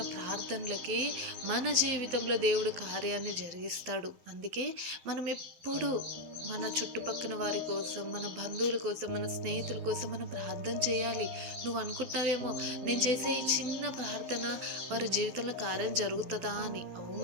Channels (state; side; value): late; left; 12 ms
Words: ప్రార్థనలకి మన జీవితంలో దేవుడు కార్యాన్ని జరిగిస్తాడు. అందుకే మనం ఎప్పుడు మన చుట్టుపక్కల వారి కోసం, మన బంధువుల కోసం, మన స్నేహితుల కోసం మనం ప్రార్థన చేయాలి. నువ్వు అనుకుంటున్నావేమో, నేను చేసే ఈ చిన్న ప్రార్థన వారి జీవితంలో కార్యం జరుగుతుందా అని.